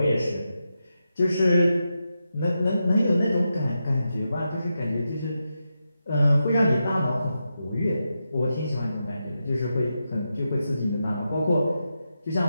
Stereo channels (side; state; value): both; inverted; correlation -0.88